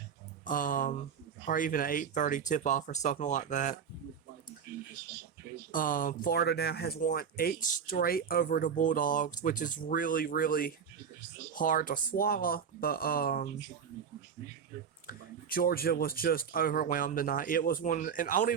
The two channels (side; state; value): left; quieter; 7.2 dB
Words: or even an 8:30 tip-off or something like that. Florida now has won 8 straight over the Bulldogs, which is really, really hard to swallow, but Georgia was just overwhelmed tonight. It was one, and I don't